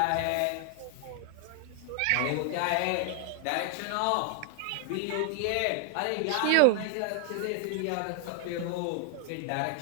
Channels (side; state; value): both; different; correlation 0.00